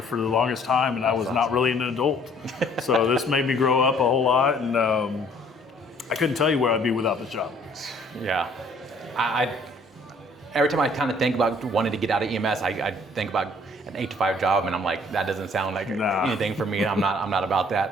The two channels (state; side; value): normal; both; correlation 0.58